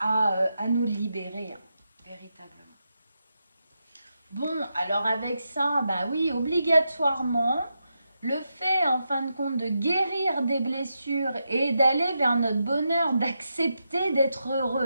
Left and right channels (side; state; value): both; inverted; correlation -0.86